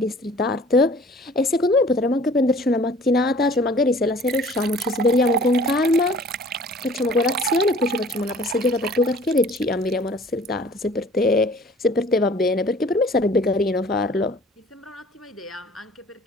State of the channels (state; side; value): normal; both; correlation 0.50